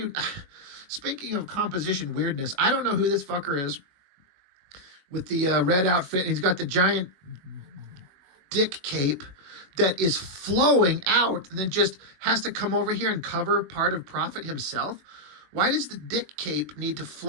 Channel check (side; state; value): left; late; 21 ms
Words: Speaking of composition weirdness, I don't know who this fucker is with the red outfit. And he's got the giant dick cape that is flowing out and then just has to come over here and cover part of Prophet himself. Why does the dick cape need to